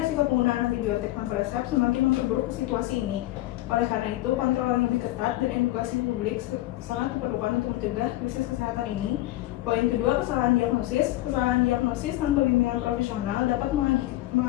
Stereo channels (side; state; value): right; quieter; 16.7 dB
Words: penggunaan antibiotik tanpa resep semakin memperburuk situasi ini. Oleh karena itu, kontrol yang lebih ketat dan edukasi publik sangat diperlukan untuk mencegah krisis kesehatan ini. Poin kedua, kesalahan diagnosis. Kesalahan diagnosis tanpa bimbingan profesional dapat